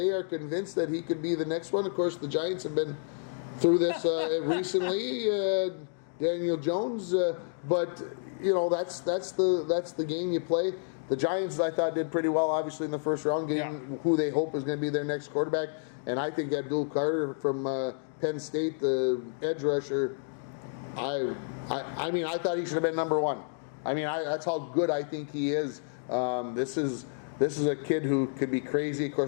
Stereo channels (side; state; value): right; silent; digital silence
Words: are convinced that he could be the next one. Of course, the Giants have been through this recently. Daniel Jones, but that's the game you play. The Giants, I thought, did pretty well, obviously, in the first round, getting who they hope is going to be their next quarterback. And I think Abdul Carter from Penn State, the edge rusher, I mean, I thought he should have been number one. I mean, that's how good I think he is. This is a kid who could be crazy. Of